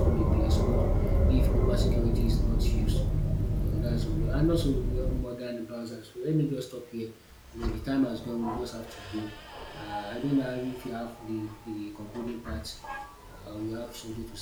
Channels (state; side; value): identical; both; correlation 1.00